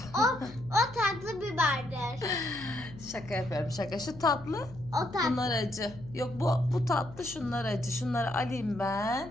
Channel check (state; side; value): noise; left; hum, 17 dB below the sound